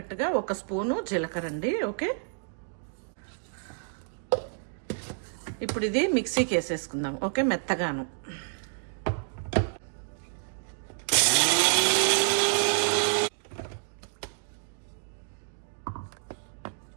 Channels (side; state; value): left; silent; digital silence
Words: 1 స్పూను జీలకర్ర అండి. ఓకే, ఇప్పుడు ఇది మిక్సీకి వేసేసుకుందాం. ఓకే, మెత్తగాను.